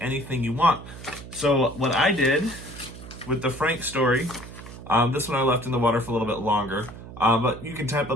you want. So what I did with the Frank story, this one I left in the water for a little bit longer, but you can type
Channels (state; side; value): noise; right; hum, 14 dB below the sound